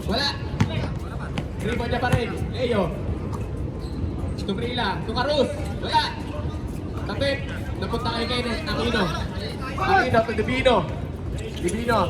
Wala. Rebound niya pa rin. Leo. Tubrila. Tukarus. Wala. Tapit. Napunta kay Kenneth. Aquino. Aquino to Divino.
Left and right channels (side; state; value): both; identical; correlation 1.00